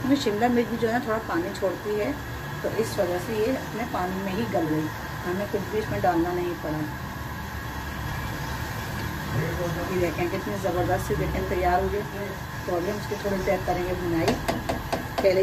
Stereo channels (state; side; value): identical; both; correlation 1.00